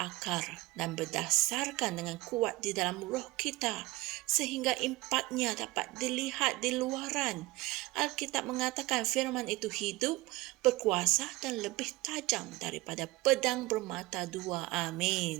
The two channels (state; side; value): quieter; left; 19.8 dB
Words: dan berdasarkan dengan kuat di dalam roh kita, sehingga impaknya dapat dilihat di luaran. Alkitab mengatakan firman itu hidup, berkuasa dan lebih tajam daripada pedang bermata dua.